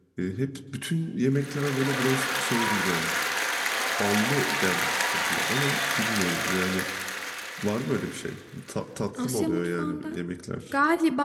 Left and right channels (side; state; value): both; identical; correlation 1.00